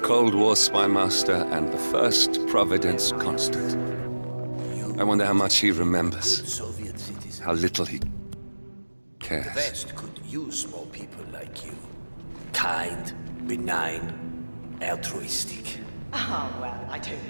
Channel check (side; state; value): both; inverted; correlation -1.00